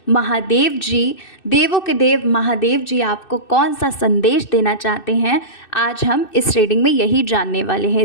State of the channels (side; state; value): right; late; 2.6 ms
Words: महादेव जी, देवों के देव महादेव जी आपको कौन सा संदेश देना चाहते हैं, आज हम इस रीडिंग में यही जानने वाले